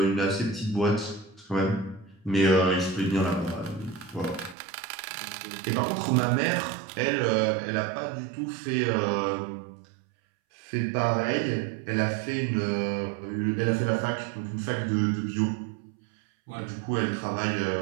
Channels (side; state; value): left; drops out; at 4.5 s